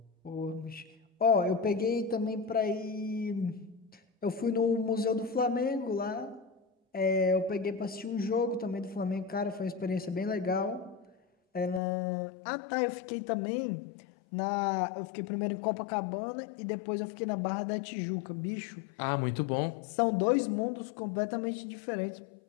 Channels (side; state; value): right; drops out; at 11.8 s